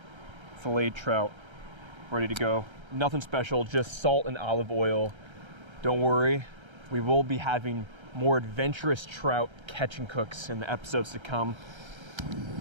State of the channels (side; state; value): left; late; 1.3 ms